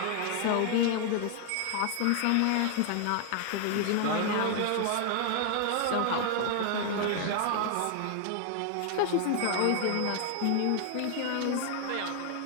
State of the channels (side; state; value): both; different; correlation 0.00